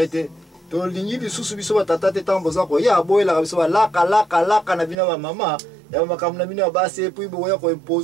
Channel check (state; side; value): drops out; left; at 5.0 s